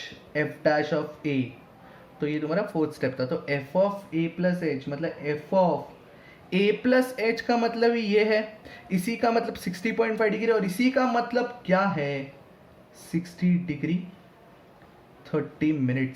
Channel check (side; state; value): both; identical; correlation 1.00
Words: F dash of A. तो ये तुम्हारा fourth step था। तो F of A plus H मतलब F of A plus H का मतलब ये है, इसी का मतलब 60.5 डिग्री, और इसी का मतलब क्या है 60 degree 30